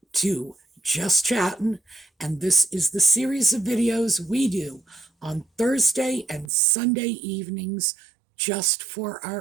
to Just Chattin', and this is the series of videos we do on Thursday and Sunday evenings just for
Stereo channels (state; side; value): drops out; left; at 6.5 s